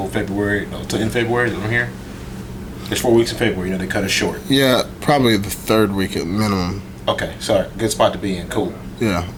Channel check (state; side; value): identical; both; correlation 1.00